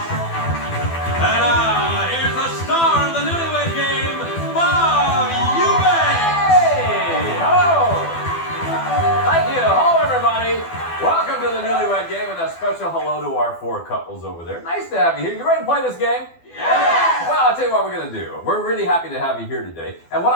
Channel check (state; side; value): late; right; 12 ms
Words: And here's the star of the Newlywed Game, Bob Eubanks. Hey, hello. Thank you. Hello, everybody. Welcome to the Newlywed Game, and a special hello to our 4 couples over there. Nice to have you here. You ready to play this game? Yes! Well, I'll tell you what we're going to do. We're really happy to have you here today. And what